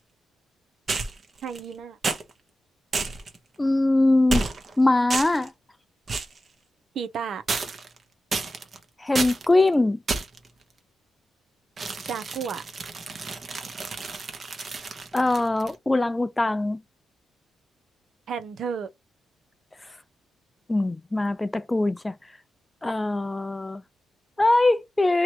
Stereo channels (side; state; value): both; normal; correlation 0.95